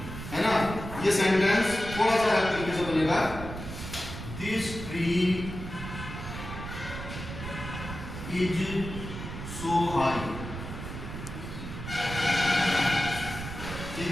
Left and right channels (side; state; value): right; noise; rumble, 8 dB below the sound